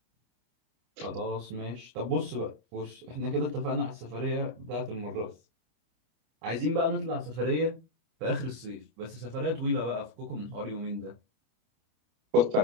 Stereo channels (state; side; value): late; left; 28 ms